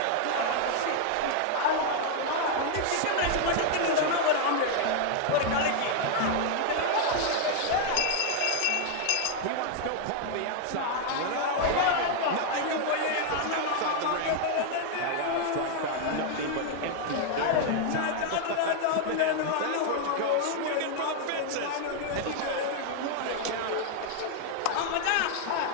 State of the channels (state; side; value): different; both; correlation 0.00